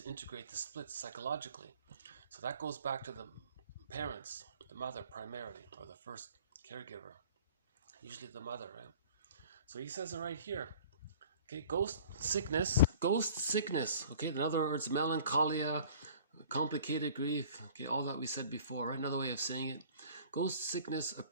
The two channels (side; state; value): both; inverted; correlation -0.48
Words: integrate the splits psychologically. So that goes back to the parents, the mother primarily, or the first caregiver. Usually the mother, right? So he says it right here. Okay, ghost sickness, okay, in other words, melancholia, complicated grief, okay, all that we said before, right? Another way of saying it. Ghost sickness